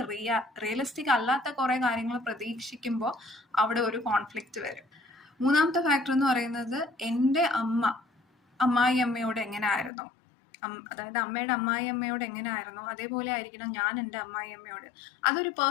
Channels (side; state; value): right; drops out; at 9.9 s